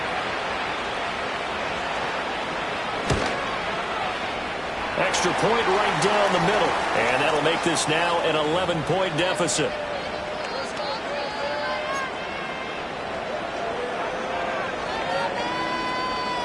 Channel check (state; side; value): identical; both; correlation 1.00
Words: Extra point right down the middle. And that'll make this now an 11-point deficit.